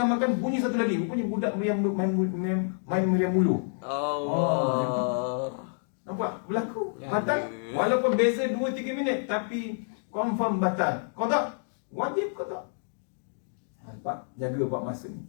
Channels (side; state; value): right; silent; digital silence